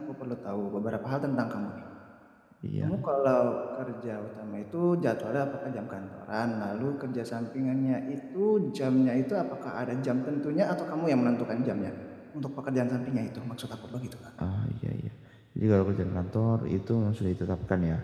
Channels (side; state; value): both; identical; correlation 1.00